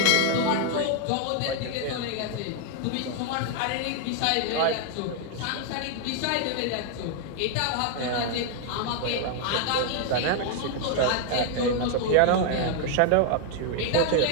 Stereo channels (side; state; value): both; different; correlation 0.00